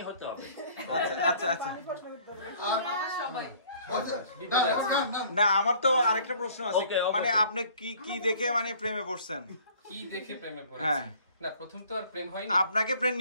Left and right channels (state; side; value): inverted; both; correlation -0.54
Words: হতে হবে। আচ্ছা না আমার তো আরেকটা প্রশ্ন আছে। মানে আপনি কি দেখে মানে প্রেমে পড়ছেন? কি দেখে প্রেমে পড়েছেন? না প্রথম তো আর প্রেম হয়নি। আপনাকে প্রেম